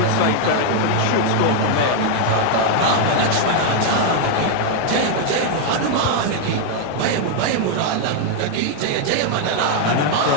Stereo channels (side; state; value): both; different; correlation 0.00